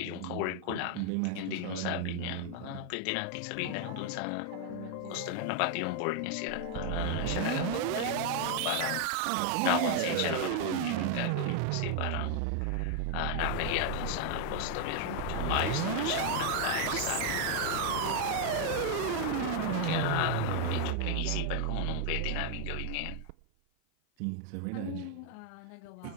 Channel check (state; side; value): different; both; correlation 0.00